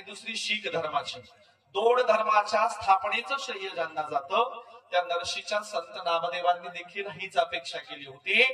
दुसरी शीख धर्माची. 2 धर्माच्या स्थापनेचं श्रेय ज्यांना जातं त्या नरशीच्या संत नामदेवांनी देखील हीच अपेक्षा केली होती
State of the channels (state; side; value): identical; both; correlation 1.00